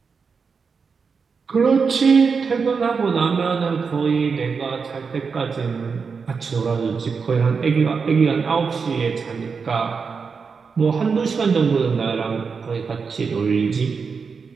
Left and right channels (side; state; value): left; quieter; 5.4 dB